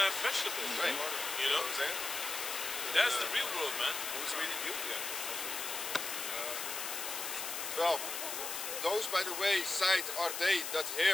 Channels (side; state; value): left; noise; hiss, 4 dB below the sound